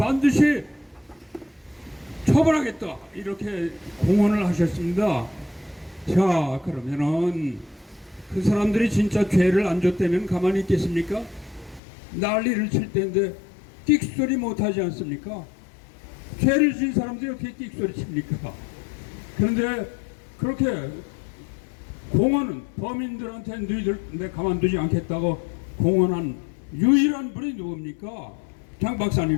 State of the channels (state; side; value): drops out; right; at 11.8 s